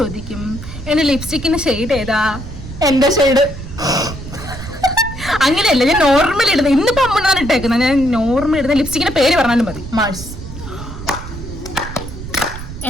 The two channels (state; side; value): noise; right; rumble, 11 dB below the sound